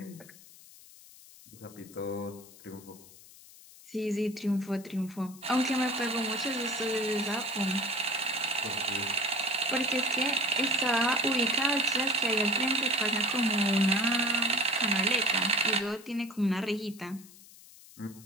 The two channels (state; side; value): noise; left; hiss, 21 dB below the sound